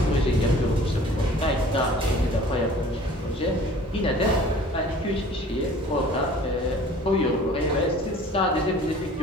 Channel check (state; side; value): normal; both; correlation 0.48